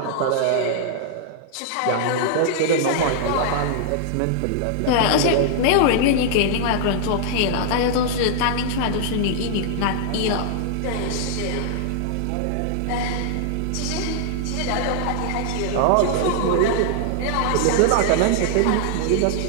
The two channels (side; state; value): both; different; correlation -0.01